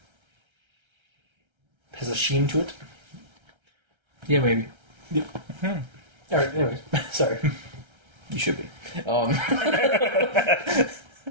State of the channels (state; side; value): late; left; 1.3 ms